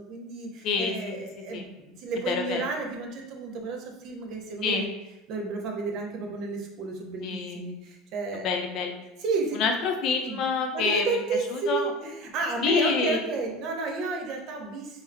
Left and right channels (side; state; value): both; normal; correlation 0.33